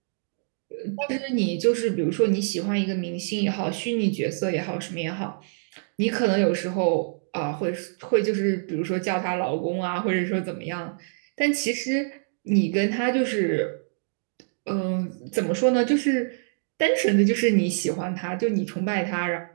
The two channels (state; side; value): silent; left; digital silence